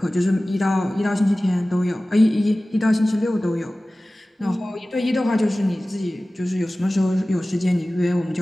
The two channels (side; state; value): both; normal; correlation 0.97